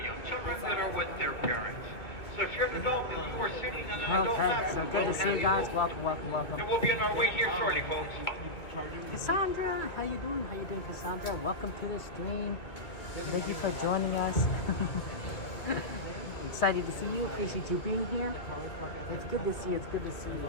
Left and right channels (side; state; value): right; late; 2.2 ms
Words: young children that are with their parents. So if you're an adult and you are sitting on an adult lap, so good to see you guys. Welcome, welcome, welcome. And we'll be on our way here shortly, folks. Cassandra, how you doing? How you doing, Cassandra? Welcome to the stream. Thank you for joining us. Excited to see you. Appreciate you being here. It's good to see you. It's good to see